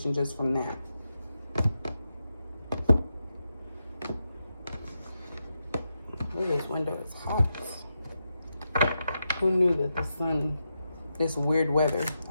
just from that. Ooh, this window is hot. Who knew that the sun, this weird weather.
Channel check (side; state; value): both; inverted; correlation -0.87